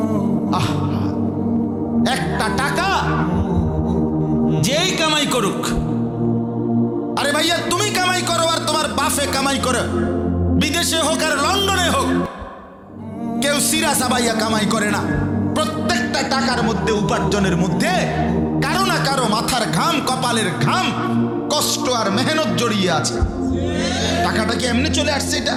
একটা টাকা যেই কামাই করুক, আরে ভাইয়া তুমি কামাই করো আর তোমার বাপে কামাই করো, বিদেশে হোক আর লন্ডনে হোক, কেউ সিরা সাবাইয়া কামাই করে না। প্রত্যেকটা টাকার মধ্যে, উপার্জনের মধ্যে কারো না কারো মাথার ঘাম, কপালের ঘাম, কষ্ট আর মেহনত জড়িয়ে আছে। টাকাটা কি এমনি চলে আসছে? এটা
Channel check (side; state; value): both; identical; correlation 1.00